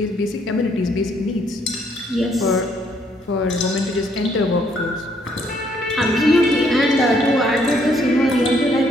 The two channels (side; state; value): both; normal; correlation 0.68